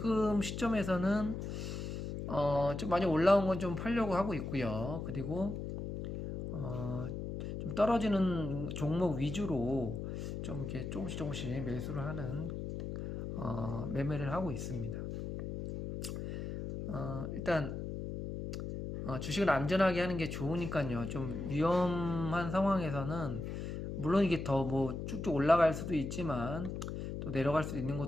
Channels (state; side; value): noise; left; hum, 5 dB below the sound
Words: 시점에서는 좀 많이 올라온 건 좀 팔려고 하고 있고요. 그리고 좀 떨어지는 종목 위주로 좀 이렇게 조금씩 매수를 하는 매매를 하고 있습니다. 일단 주식을 안전하게 하는 게 좋으니까요. 좀 위험한 상황에서는 물론 이게 더 뭐 쭉쭉 올라갈 수도 있지만 또 내려갈 수도 있는